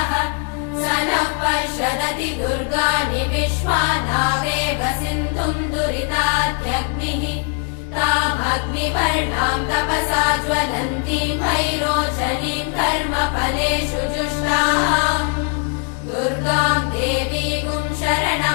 स नः पश्यदति दुर्गाणि विश्वानावेव सिन्धुम् दुरितात्यग्निः तामग्निवर्णाम् तपसा ज्वलन्तीम् भैरोचनीम् कर्मफलेषु जुष्टाम् दुर्गाम् देवीगुम्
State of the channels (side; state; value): right; quieter; 35.2 dB